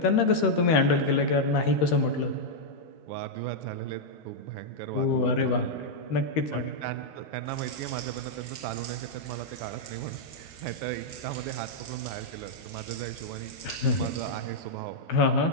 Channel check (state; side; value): late; right; 13 ms